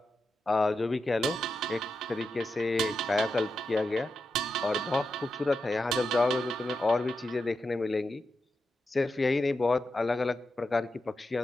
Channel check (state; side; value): normal; both; correlation 0.88